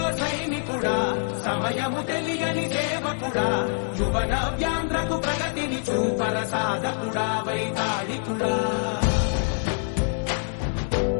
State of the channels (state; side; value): silent; right; digital silence